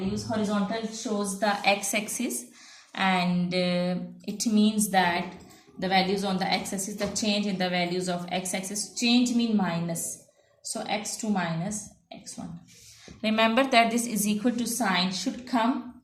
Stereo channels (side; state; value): both; identical; correlation 1.00